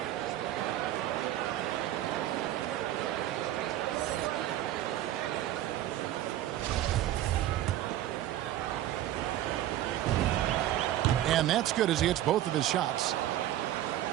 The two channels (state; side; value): quieter; left; 13.2 dB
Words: And that's good as he hits both of his shots.